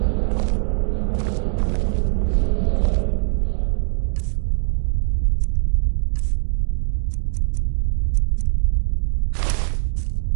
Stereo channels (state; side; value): silent; left; digital silence